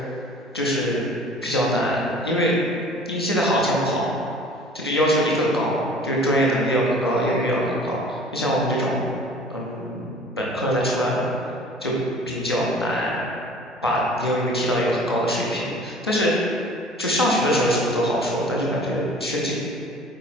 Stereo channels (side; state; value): both; normal; correlation 0.47